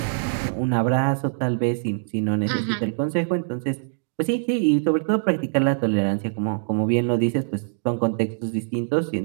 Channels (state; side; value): silent; left; digital silence